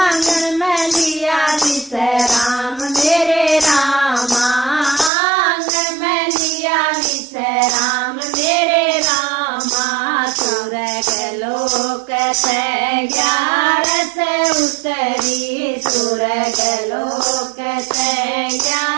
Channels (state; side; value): drops out; left; at 5.1 s